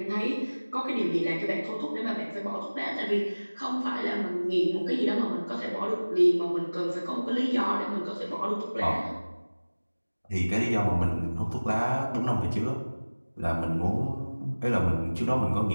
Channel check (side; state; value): both; inverted; correlation -1.00